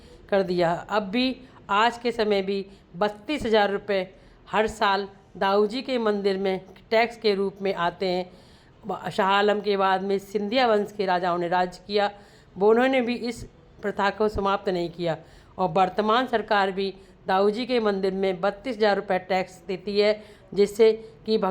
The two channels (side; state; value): both; identical; correlation 1.00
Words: कर दिया। अब भी आज के समय भी 32,000 रुपये हर साल दाऊ जी के मंदिर में टैक्स के रूप में आते हैं। शाह आलम के बाद में सिंधिया वंश के राजाओं ने राज किया, वो उन्होंने भी इस प्रथा को समाप्त नहीं किया, और वर्तमान सरकार भी दाऊ जी के मंदिर में 32,000 रुपये टैक्स देती है, जिससे कि